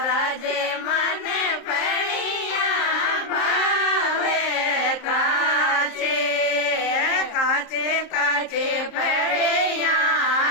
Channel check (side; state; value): right; late; 26 ms